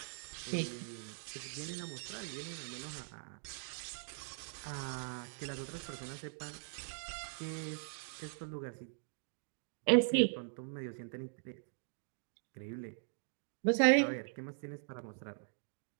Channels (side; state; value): left; silent; digital silence